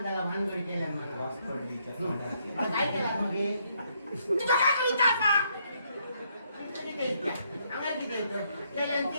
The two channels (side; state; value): both; inverted; correlation -0.73